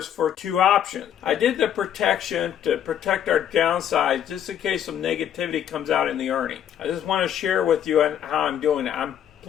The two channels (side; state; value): right; quieter; 9.9 dB